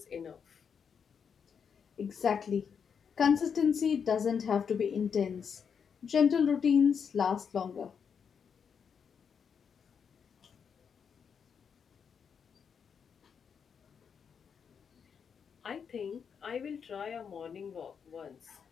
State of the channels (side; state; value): right; quieter; 6.8 dB